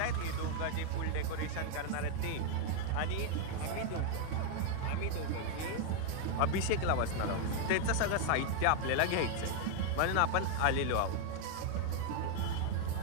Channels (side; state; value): both; different; correlation 0.00